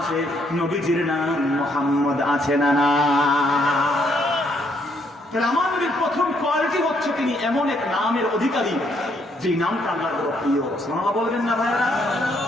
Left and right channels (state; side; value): normal; both; correlation 0.71